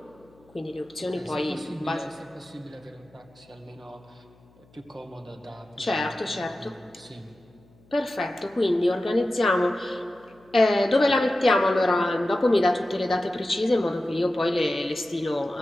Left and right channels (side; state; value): left; noise; hum, 30 dB below the sound